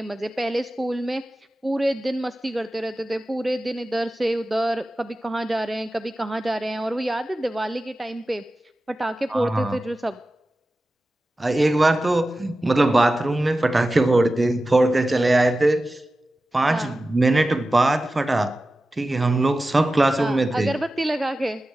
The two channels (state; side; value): normal; both; correlation 0.94